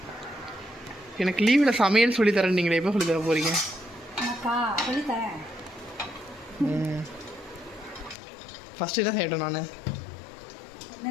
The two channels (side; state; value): right; drops out; at 8.2 s